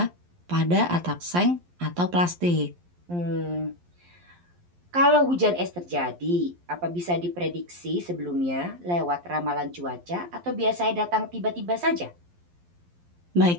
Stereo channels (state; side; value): late; left; 11 ms